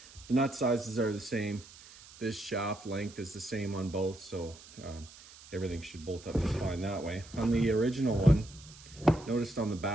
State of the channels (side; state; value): right; noise; hiss, 20 dB below the sound